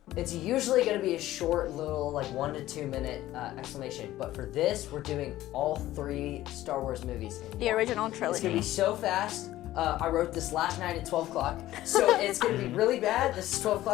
it's usually gonna be a short little, like 1 to 2 minute explanation. But for this, we're doing all 3 Star Wars movies in The one. original It's trilogy. gonna be so fast. I wrote this last night at 12 o'clock, so it's gonna be really bad. This is 12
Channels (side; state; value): right; quieter; 15.0 dB